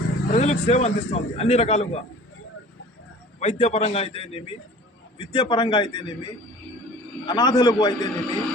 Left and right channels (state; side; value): normal; both; correlation 0.45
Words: ప్రజలకు సేవ అందిస్తుంది అన్ని రకాలుగా. వైద్యపరంగా అయితేనేమి, విద్యాపరంగా అయితేనేమి, అనాథలకు అయితేనేమి,